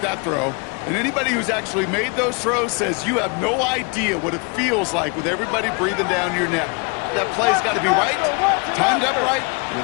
that throw. And anybody who's actually made those throws says you have no idea what it feels like with everybody breathing down your neck. That play's got to be right, timed up right, and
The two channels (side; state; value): right; quieter; 32.9 dB